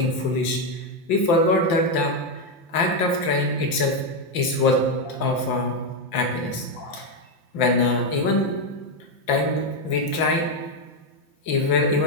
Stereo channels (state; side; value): late; right; 5.8 ms